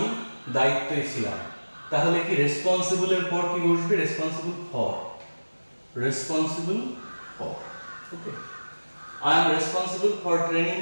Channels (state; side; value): inverted; both; correlation -1.00